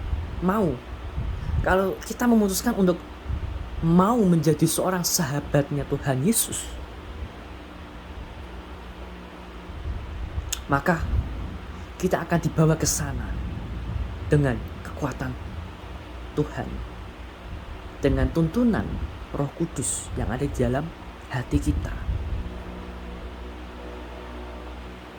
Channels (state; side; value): identical; both; correlation 1.00